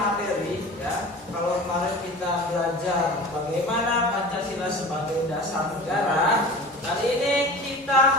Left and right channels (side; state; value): both; normal; correlation 0.37